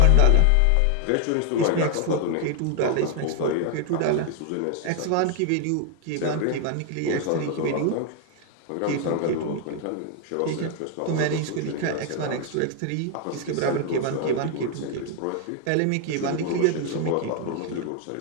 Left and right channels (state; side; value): different; both; correlation 0.00